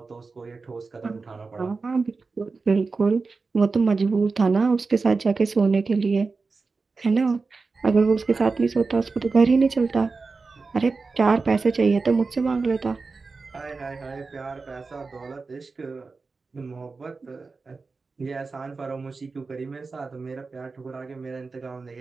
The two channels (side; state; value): left; quieter; 4.2 dB